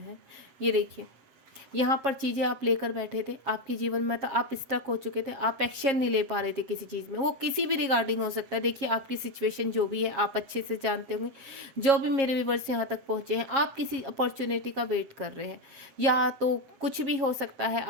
ये देखिए, यहाँ पर चीज़ें आप लेकर बैठे थे, आपके जीवन में तो आप स्टक हो चुके थे, आप एक्शन नहीं ले पा रहे थे किसी चीज़ में, वो किसी भी रिगार्डिंग हो सकता है। देखिए, आपकी सिचुएशन जो भी है आप अच्छे से जानते होंगे। जो भी मेरे व्यूअर्स यहाँ तक पहुँचे हैं, आप किसी अपॉर्चुनिटी का वेट कर रहे हैं, या तो कुछ भी हो सकता है,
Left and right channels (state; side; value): late; left; 7.4 ms